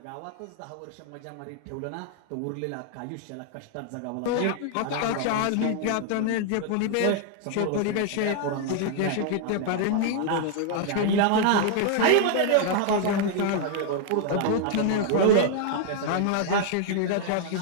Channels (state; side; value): different; both; correlation 0.00